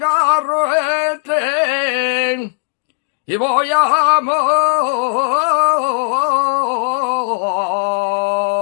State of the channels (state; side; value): silent; right; digital silence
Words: el tren y voy a